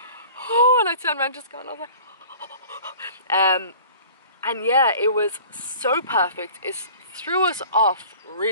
oh, and I turned around just going, I was like, and yeah, it was so perfect. It threw us off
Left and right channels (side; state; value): both; inverted; correlation -0.45